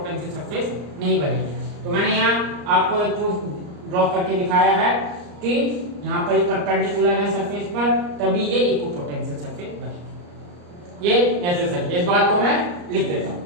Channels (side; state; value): left; late; 34 ms